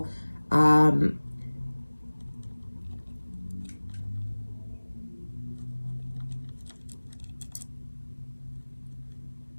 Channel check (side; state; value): both; inverted; correlation -1.00